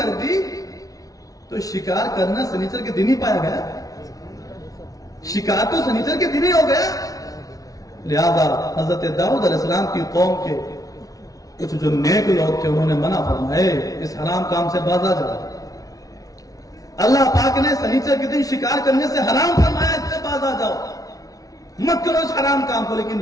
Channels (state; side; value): late; right; 0.18 ms